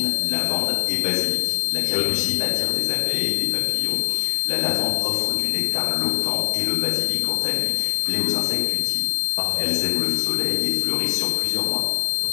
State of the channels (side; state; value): right; silent; digital silence